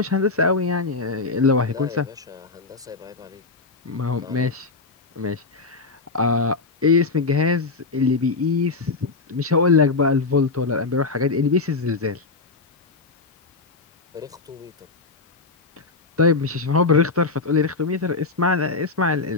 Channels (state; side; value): quieter; right; 4.0 dB